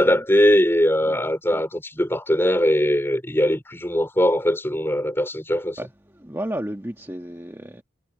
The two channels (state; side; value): normal; both; correlation 0.87